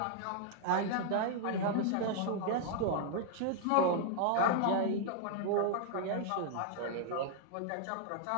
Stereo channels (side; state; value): both; different; correlation -0.01